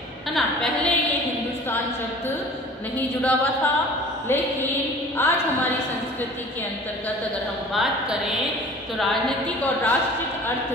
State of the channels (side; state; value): both; normal; correlation 0.45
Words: है ना। पहले ये हिंदुस्तान शब्द नहीं जुड़ा हुआ था, लेकिन आज हमारी संस्कृति के अंतर्गत अगर हम बात करें तो राजनीतिक और राष्ट्रीय अर्थ